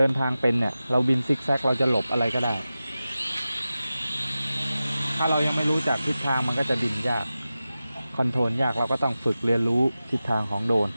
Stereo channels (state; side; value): inverted; both; correlation -0.94